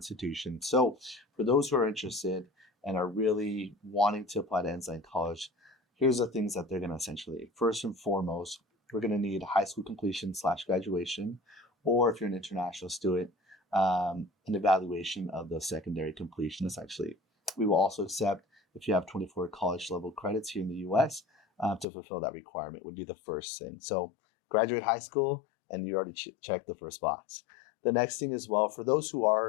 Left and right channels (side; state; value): right; drops out; at 21.9 s